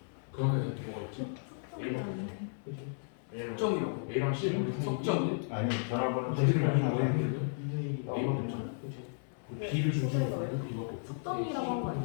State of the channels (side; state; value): right; silent; 55 dB below the other